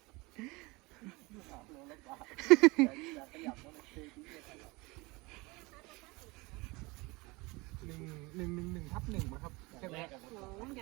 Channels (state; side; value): quieter; left; 24.4 dB